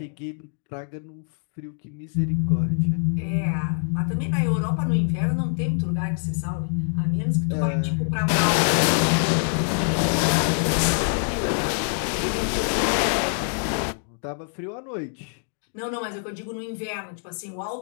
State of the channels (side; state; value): right; silent; digital silence